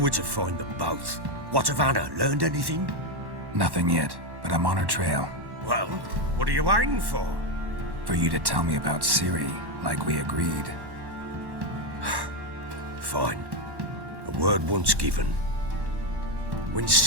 to find them both. What of Anna? Learned anything? Nothing yet, but I'm on her trail. Well, what are you waiting for? For you to tell me about Ciri, like we agreed. Fine. A word once given. When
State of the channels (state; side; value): late; left; 1.1 ms